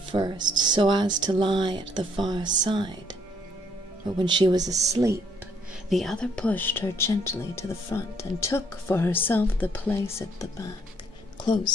first, so as to lie at the far side. But when she was asleep, the other pushed her gently to the front, and took for herself the place at the back,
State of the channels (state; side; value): normal; both; correlation 0.66